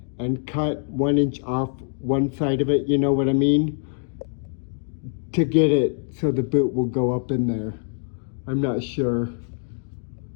and cut 1 inch off one side of it, you know what I mean? To get it so the boot will go up in there. I'm not sure.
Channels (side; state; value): right; silent; 58 dB below the other